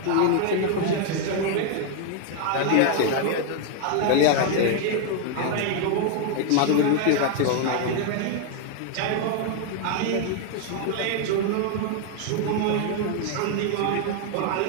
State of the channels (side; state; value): both; different; correlation 0.00